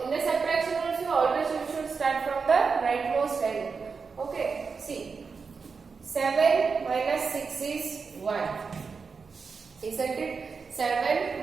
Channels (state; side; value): quieter; left; 5.1 dB